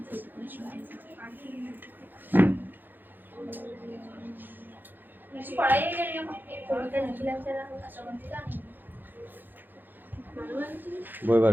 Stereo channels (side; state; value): left; late; 0.090 ms